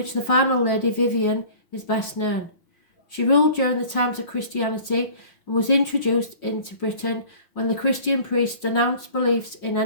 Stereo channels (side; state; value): right; late; 5.5 ms